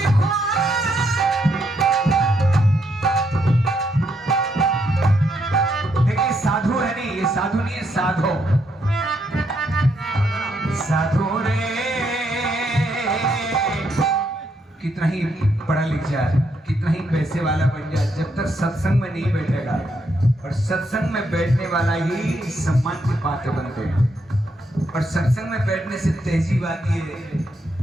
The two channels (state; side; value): normal; both; correlation 0.77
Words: घोर। देखिए साधु है नहीं, ये साधु नहीं है, साधो। साधु रे कितना ही पढ़ा लिख जाए, कितना ही पैसे वाला बन जाए, जब तक सत्संग में नहीं बैठेगा, और सत्संग में बैठने वाला ही सम्मान की पात्र बनते हैं। और सत्संग में बैठने से तहजीब आती है,